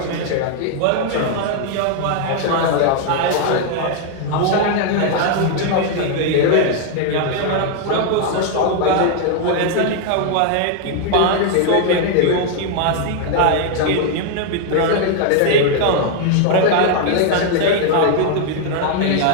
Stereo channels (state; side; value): different; both; correlation 0.00